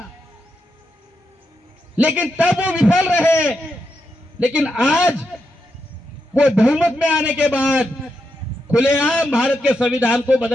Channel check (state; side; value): normal; both; correlation 0.84